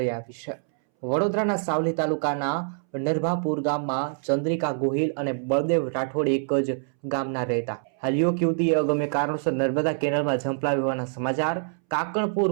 આવી છે। વડોદરાના સાવલી તાલુકાના નરભાપુર ગામમાં ચંદ્રિકા ગોહિલ અને બળદેવ રાઠોડ એક જ ગામના રહેતા। હાલ યુવક યુવતીએ અગમ્ય કારણોસર નર્મદા કેનાલમાં ઝંપલાવી હોવાના સમાચાર।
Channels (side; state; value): left; silent; 61 dB below the other